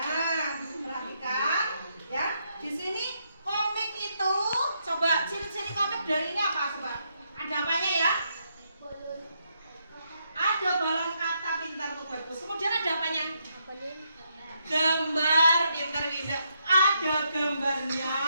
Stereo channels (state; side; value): inverted; both; correlation -0.78